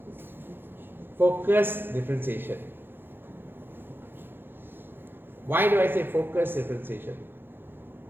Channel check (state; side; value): late; left; 0.10 ms